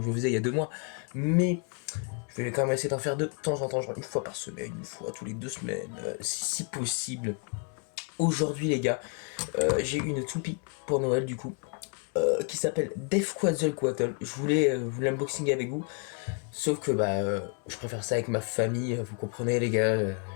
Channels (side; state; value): right; quieter; 37.1 dB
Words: je le faisais il y a 2 mois. Mais je vais quand même essayer d'en faire de temps en temps, genre une fois par semaine, une fois tous les 2 semaines, si possible. Aujourd'hui les gars, j'ai une toupie pour Noël du coup. Qui s'appelle Deffquatzalcoatl. Je voulais l'unboxing avec vous, sauf que je préfère ça avec ma famille, vous comprenez les gars,